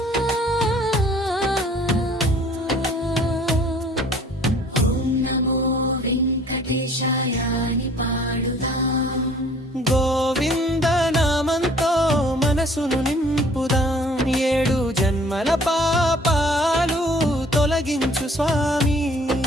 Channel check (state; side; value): normal; both; correlation 0.55